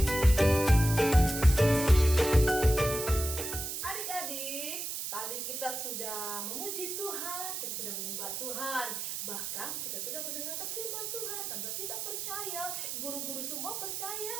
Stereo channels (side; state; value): right; noise; hiss, 4 dB below the sound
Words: sudah memuji Tuhan, kita sudah menyembah Tuhan, bahkan kita sudah mendengarkan firman Tuhan. Tante kita percaya, guru-guru semua percaya